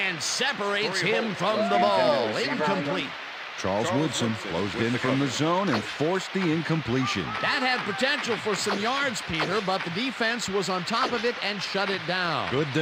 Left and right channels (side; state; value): both; identical; correlation 1.00